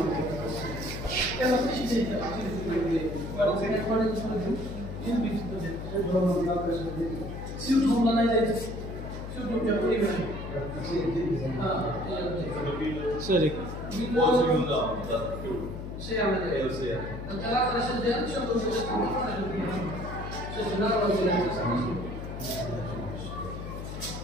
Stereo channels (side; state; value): left; noise; hum, 8 dB below the sound